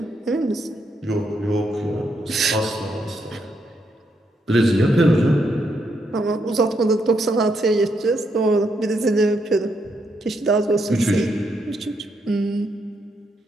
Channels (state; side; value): normal; both; correlation 0.78